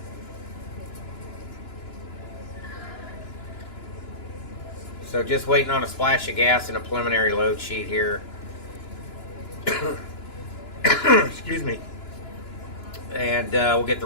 So just waiting on a splash of gas and a preliminary load sheet here. Excuse me. And we'll get the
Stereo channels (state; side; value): late; right; 2.9 ms